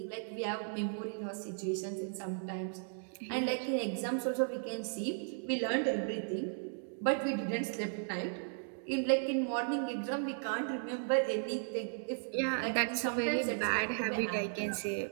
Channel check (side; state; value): left; silent; digital silence